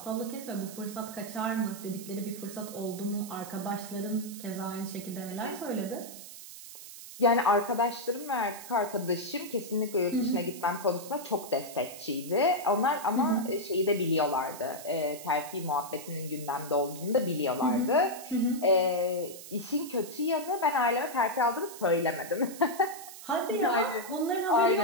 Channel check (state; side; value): noise; right; hiss, 14 dB below the sound